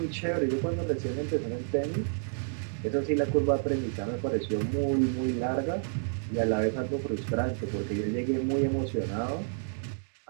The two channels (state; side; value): silent; left; digital silence